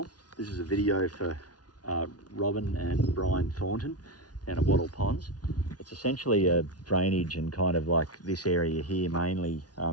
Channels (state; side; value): late; right; 0.69 ms